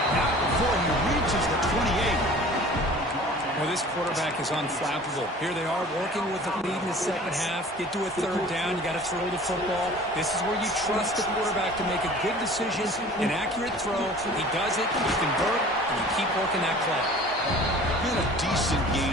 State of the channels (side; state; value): both; normal; correlation 0.45